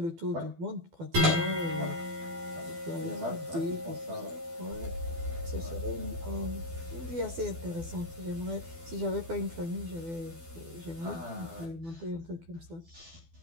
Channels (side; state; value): left; late; 12 ms